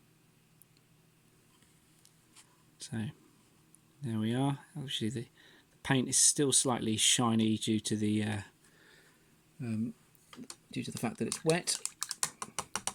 So there we are. Obviously the paint is still slightly shiny due to the fact that it's wet.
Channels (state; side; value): identical; both; correlation 1.00